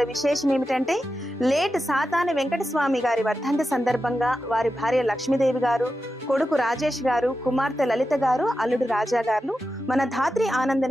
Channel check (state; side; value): normal; both; correlation 0.90